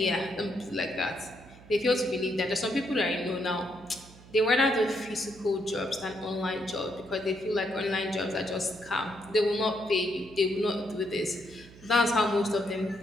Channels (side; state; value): right; noise; hum, 21 dB below the sound